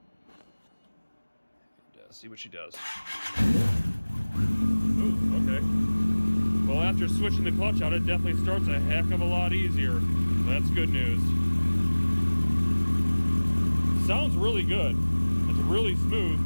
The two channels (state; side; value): inverted; both; correlation -1.00